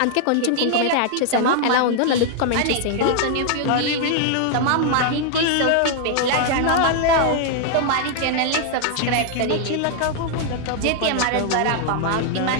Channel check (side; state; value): both; different; correlation 0.00